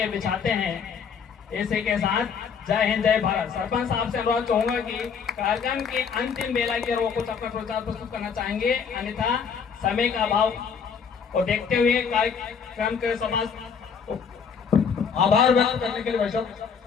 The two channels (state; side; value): quieter; right; 6.4 dB